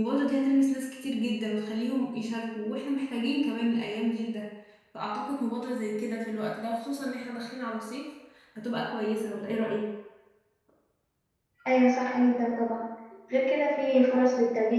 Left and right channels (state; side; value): identical; both; correlation 1.00